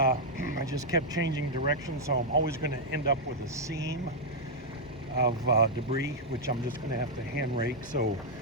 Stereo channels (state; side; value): normal; both; correlation -0.04